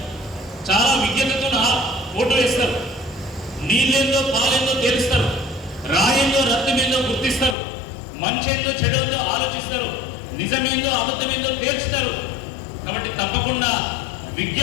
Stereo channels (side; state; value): right; drops out; at 7.6 s